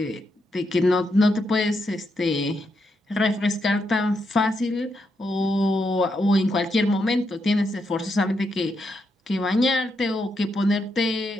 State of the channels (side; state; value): both; normal; correlation 0.81